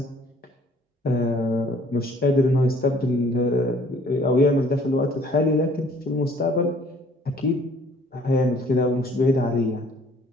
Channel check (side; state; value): both; normal; correlation 0.57